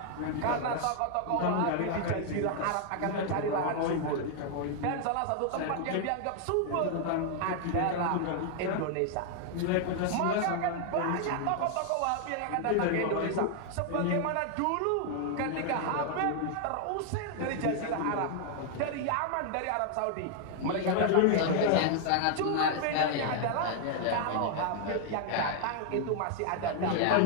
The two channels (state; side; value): different; both; correlation 0.00